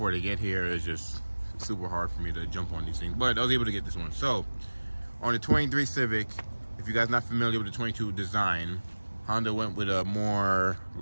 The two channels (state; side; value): inverted; both; correlation -1.00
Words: they get here is just super hard for me to jump on these things. But I was able to get this one. So, on the 23 Civic, if you guys are not familiar with the 22 design, Honda went with a more